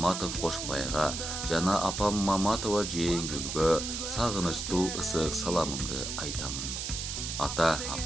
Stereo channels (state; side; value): noise; right; hiss, 4 dB below the sound